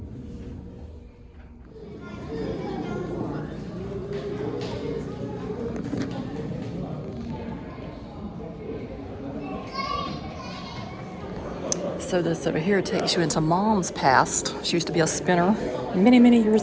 So this over here takes you into Mom's past. She used to be a spinner many, many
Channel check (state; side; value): identical; both; correlation 1.00